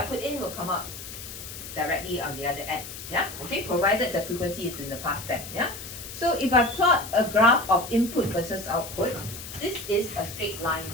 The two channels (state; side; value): noise; left; hiss, 11 dB below the sound